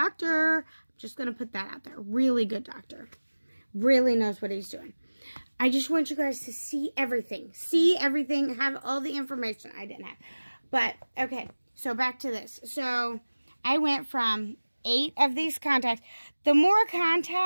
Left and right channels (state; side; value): inverted; both; correlation -1.00